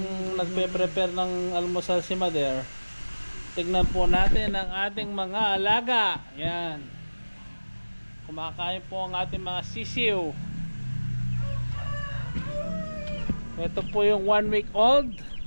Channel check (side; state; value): both; inverted; correlation -1.00